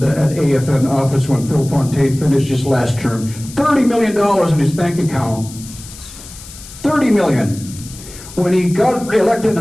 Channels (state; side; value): noise; left; hiss, 16 dB below the sound